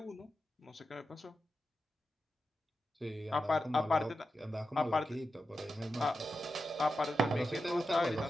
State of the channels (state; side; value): normal; both; correlation 0.90